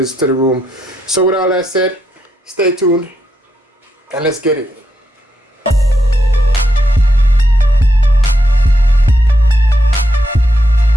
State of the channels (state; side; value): normal; both; correlation 0.81